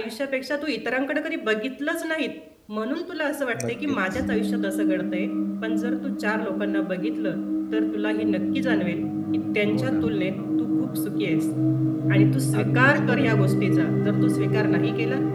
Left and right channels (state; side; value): identical; both; correlation 1.00